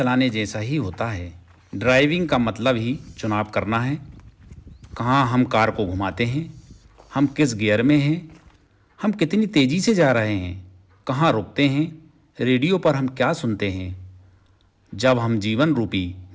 जैसा ही होता है। ड्राइविंग का मतलब ही चुनाव करना है। कहाँ हम कार को घुमाते हैं, हम किस गियर में हैं, हम कितनी तेज़ी से जा रहे हैं, कहाँ रुकते हैं, रेडियो पर हम क्या सुनते हैं। जब हम जीवन रूपी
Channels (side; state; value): both; identical; correlation 1.00